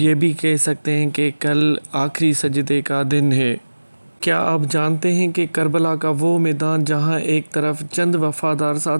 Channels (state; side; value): inverted; both; correlation -1.00